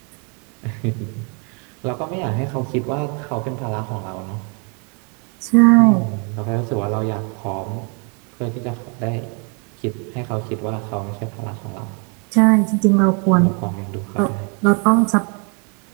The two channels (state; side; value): quieter; left; 36.3 dB